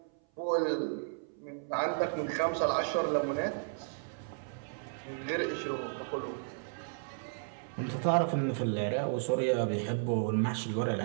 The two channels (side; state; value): left; silent; 55 dB below the other